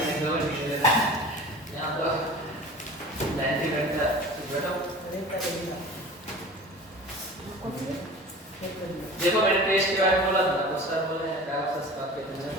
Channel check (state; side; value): normal; both; correlation 0.38